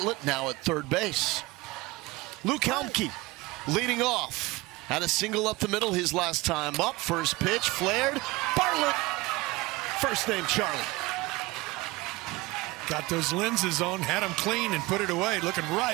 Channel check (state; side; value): quieter; left; 21.5 dB